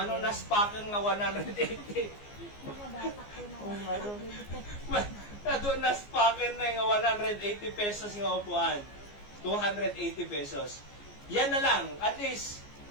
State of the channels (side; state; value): right; late; 14 ms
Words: pa kang nga 180. Nadunas pa kang na nga 180 pesos nga upuan. 280 pesos. Yan na lang. At least,